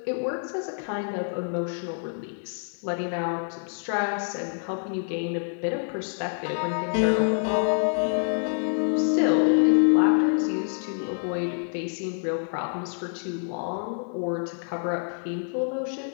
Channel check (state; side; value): silent; right; 60 dB below the other